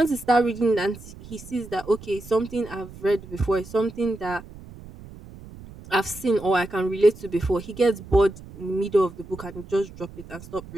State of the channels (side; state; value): right; noise; rumble, 17 dB below the sound